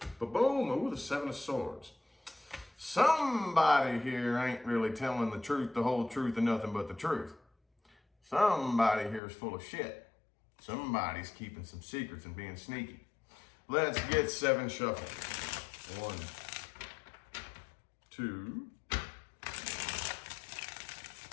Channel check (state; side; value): drops out; right; at 9.2 s